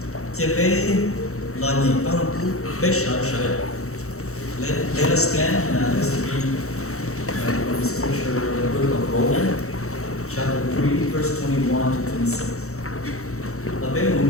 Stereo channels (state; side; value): late; right; 0.64 ms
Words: chia bé là nhìn bao nhiêu bé sợ sợ. Let us stand and let's read from the scripture, the book of Romans, chapter 3, verse 21 to 26. Là bé một